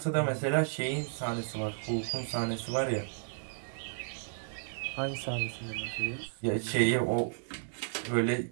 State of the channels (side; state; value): left; silent; digital silence